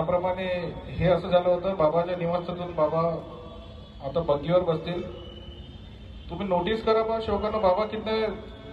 हे असं झालं होतं, बाबाच्या निवासातून बाबा आता बग्गीवर बसतील. तुम्ही नोटीस करा बा शोकानं, बाबा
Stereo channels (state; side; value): identical; both; correlation 1.00